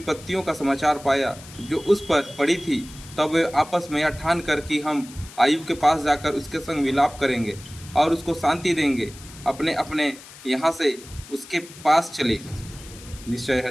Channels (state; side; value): noise; left; hiss, 18 dB below the sound